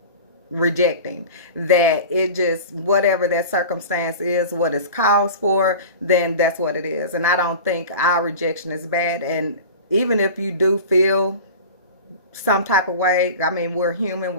rejecting, that it just, whatever that circumstance is, what it's caused for, then that's what it is. And I don't think our rejection is bad. And even if you do feel some type of way, I mean, we're human,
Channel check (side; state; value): both; inverted; correlation -0.35